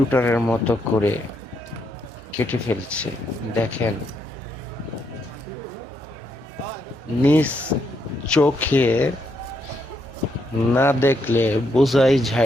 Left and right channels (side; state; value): both; normal; correlation 0.77